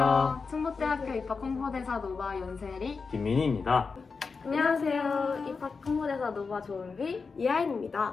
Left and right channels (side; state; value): right; quieter; 4.8 dB